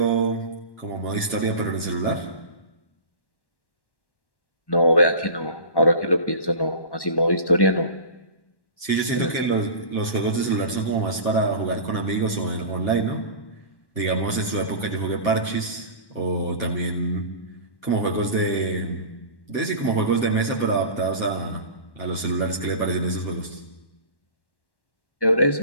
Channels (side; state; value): right; late; 1.1 ms